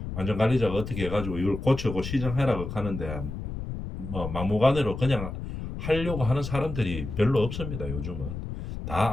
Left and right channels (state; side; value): noise; left; rumble, 7 dB below the sound